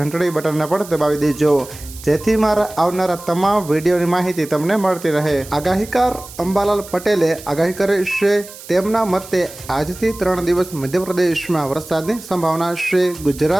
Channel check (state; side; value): noise; right; hiss, 16 dB below the sound